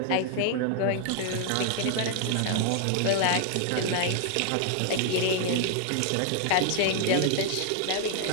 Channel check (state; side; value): different; both; correlation 0.00